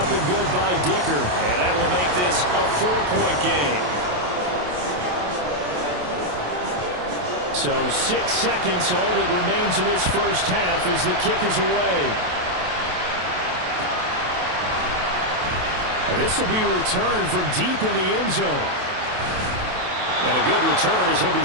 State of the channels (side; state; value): left; late; 28 ms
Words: and good by Dicker. And that will make this a 4-point game. So 6 seconds, all that remains of this first half as the kick is away. And this will be returned from deep in the end zone. And a good return as he'll be